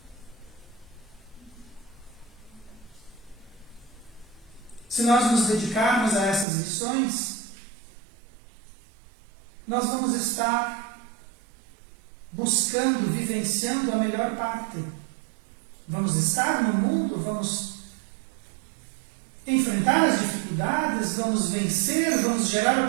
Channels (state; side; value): drops out; left; at 6.5 s